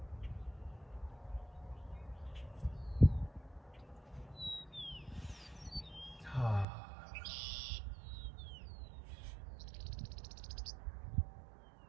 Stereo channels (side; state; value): left; drops out; at 6.7 s